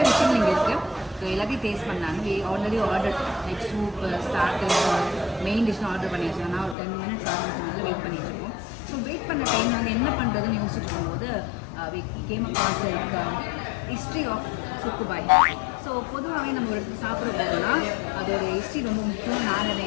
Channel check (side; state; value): right; drops out; at 6.8 s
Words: விஷயம் இங்கே இருக்குது. ஸோ எல்லாத்தையும் டேஸ்ட் பண்ணாங்க. Already order like soup starter main டிஷ்னு ஆர்டர் பண்ணி வச்சோம். நான் ஒரு 10 minutes ஆரம்பிச்சதுனால வெயிட் பண்ணிட்டு இருக்கோம். ஸோ வெயிட் பண்ண டைம் நாங்கள் என்ன பண்ணுறதுன்னு யோசிச்சுட்டு இருக்கும்போது came across like history of Subbu Bhai. So பொதுவாகவே நம்ம ஒரு இடத்துக்கு சாப்பிட போகிறோம்னா அதோட ஹிஸ்ட்ரி ரொம்ப முக்கியம். நான்